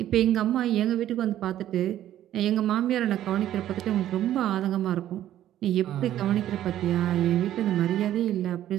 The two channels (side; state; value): left; quieter; 12.3 dB